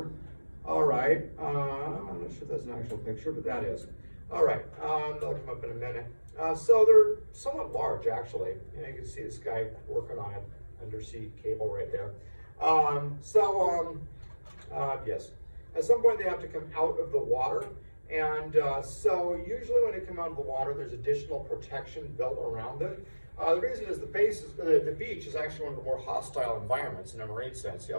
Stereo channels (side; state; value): both; inverted; correlation -1.00